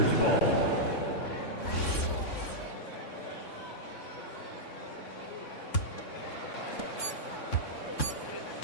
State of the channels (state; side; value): late; right; 3.6 ms